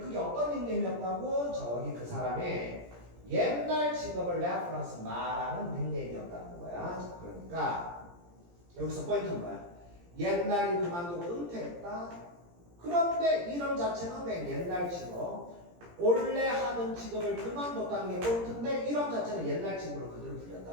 어떤 닉네임이었다고? 저기 그 사람의 옛날 직업을 레퍼런스 말하는 닉네임이었다는 거야. 그러니까 여기서 포인트는 뭐야? 옛날에 그만두고 은퇴했다. 그런데 이름 자체는 그냥 옛날 직업, 원래 하던 직업을 그만뒀다는 게 포인트인데 이름 자체는 옛날 직업으로 그대로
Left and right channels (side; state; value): left; late; 17 ms